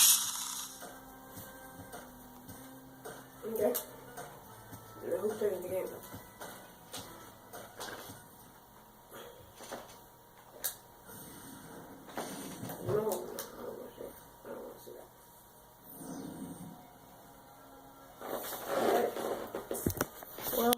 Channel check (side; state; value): both; identical; correlation 1.00